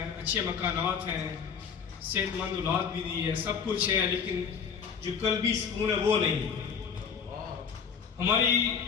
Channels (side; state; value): right; quieter; 6.6 dB